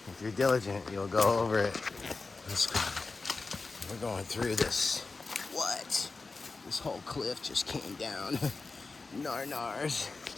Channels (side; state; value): right; quieter; 3.9 dB